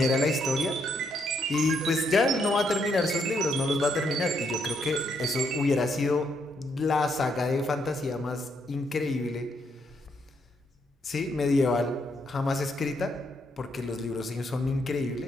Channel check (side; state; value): both; normal; correlation 0.75